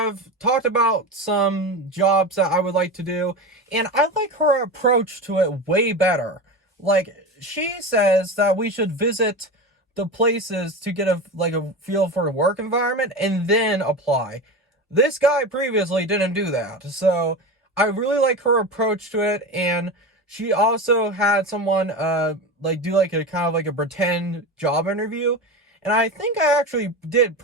talked about some jobs that I would like to do, and I like her approach to it way better. Like, she says that we should visit the places to get a feel for the work environment and then apply. This guy previously didn't do that, so I really like her approach to it. And she also had someone do like a kind of like a pretend job interview, and I think I actually did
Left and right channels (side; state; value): both; normal; correlation 0.25